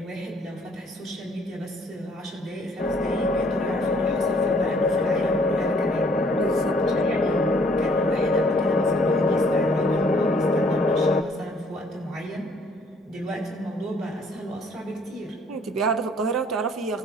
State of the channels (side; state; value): both; normal; correlation 0.61